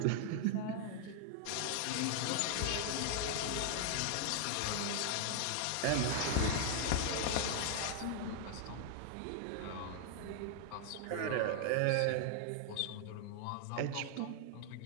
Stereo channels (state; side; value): different; both; correlation 0.00